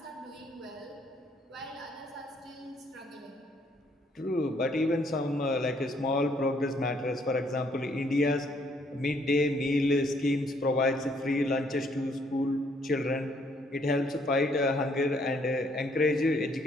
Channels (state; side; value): normal; both; correlation 0.67